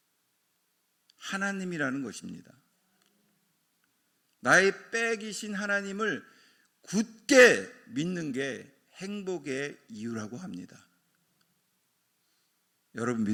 하나님이라는 것입니다. 나의 백이신 하나님을 굳게 믿는 게 행복의 이유라고 합니다. 여러분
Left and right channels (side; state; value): both; identical; correlation 1.00